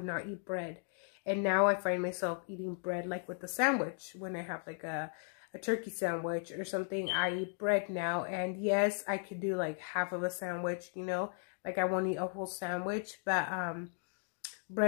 not eat bread, and now I find myself eating bread like with a sandwich. When I have like a turkey sandwich or something, I eat bread now. And yes, I could do like half of a sandwich, you know, like I won't eat a whole sandwich, but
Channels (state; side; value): silent; right; 54 dB below the other